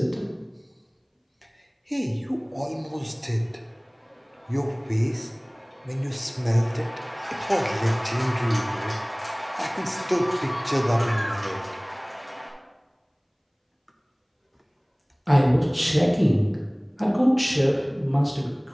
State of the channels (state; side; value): identical; both; correlation 1.00